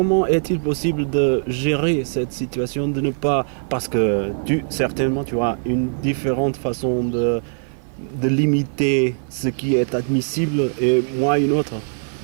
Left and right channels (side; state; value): left; silent; 56 dB below the other